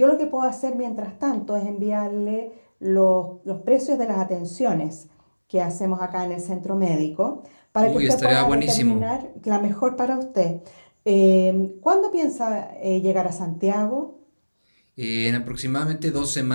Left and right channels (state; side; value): inverted; both; correlation -1.00